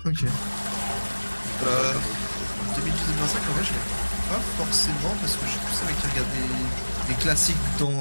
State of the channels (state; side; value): inverted; both; correlation -1.00